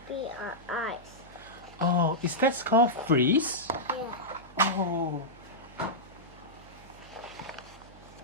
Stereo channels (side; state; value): right; noise; hum, 21 dB below the sound